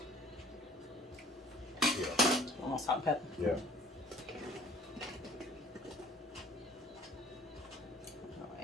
Yeah. More salt and pepper. Yeah. I'll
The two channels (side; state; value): both; normal; correlation 0.53